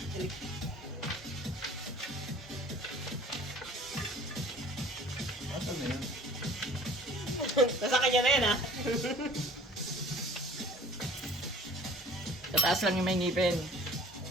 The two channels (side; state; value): both; normal; correlation 0.49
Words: Asan na yun? Nasa kanya na yan, ha? Tataas lang yung may ngipin.